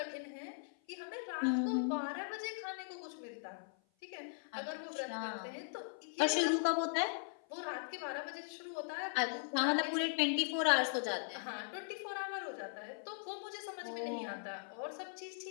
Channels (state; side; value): silent; right; 51 dB below the other